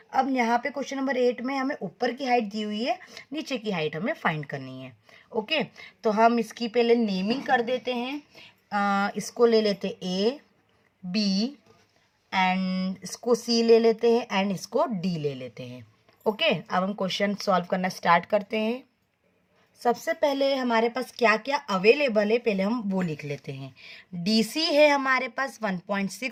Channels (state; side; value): identical; both; correlation 1.00